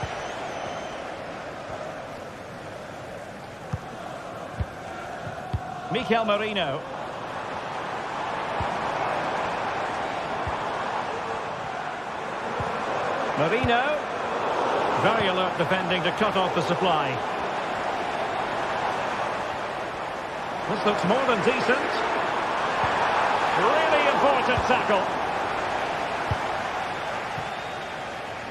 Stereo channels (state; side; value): identical; both; correlation 1.00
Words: Mikel Merino. Merino. Very alert defending to cut off the supply. This looks more than decent. Really important tackle.